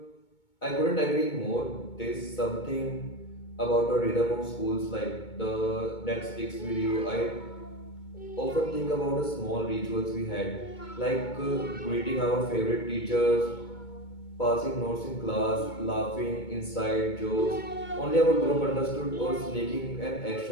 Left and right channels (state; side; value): late; right; 2.2 ms